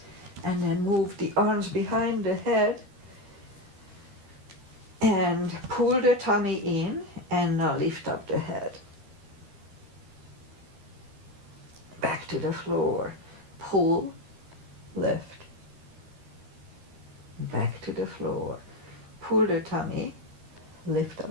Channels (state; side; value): late; left; 13 ms